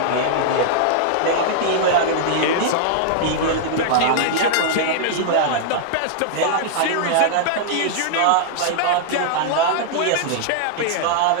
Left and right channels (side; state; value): both; different; correlation -0.01